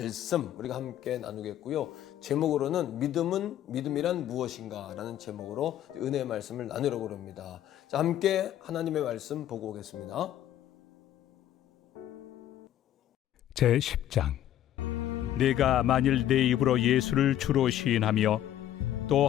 우리가 함께 나누겠고요. 제목으로는 믿음이란 무엇인가라는 제목으로 은혜의 말씀을 나누려고 합니다. 자, 함께 하나님의 말씀 보고 오겠습니다. 제 10장. 내가 만일 내 입으로 예수를 주로 시인하며 또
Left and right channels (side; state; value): right; quieter; 11.8 dB